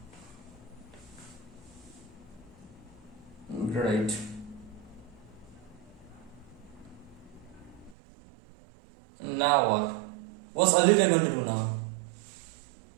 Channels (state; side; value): drops out; left; at 8.0 s